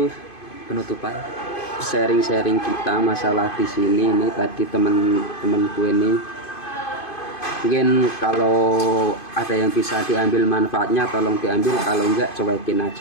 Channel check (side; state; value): right; late; 2.5 ms